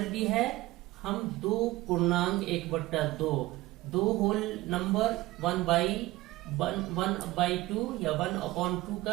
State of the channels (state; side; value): quieter; left; 18.5 dB